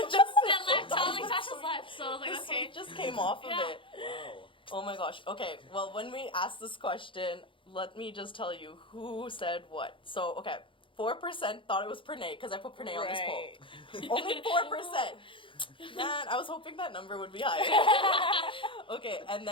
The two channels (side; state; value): right; late; 0.25 ms